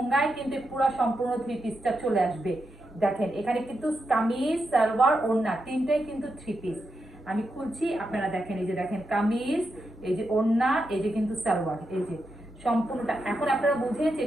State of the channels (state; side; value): normal; both; correlation 0.86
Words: কিন্তু পুরো সম্পূর্ণ থ্রি পিসটা চলে আসবে। দেখেন এখানে কিন্তু কামিজ, সালোয়ার, ওড়না তিনটাই কিন্তু থ্রি পিস। আমি খুলছি, আপনারা দেখেন। এই যে দেখেন কামিজ, এই যে ওড়না, এই যে কিন্তু সালোয়ার, এই যে সম্পূর্ণটা। এখন আপনারা বুঝেন যে